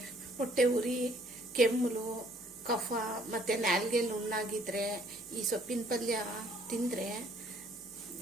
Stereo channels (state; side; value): noise; left; hum, 28 dB below the sound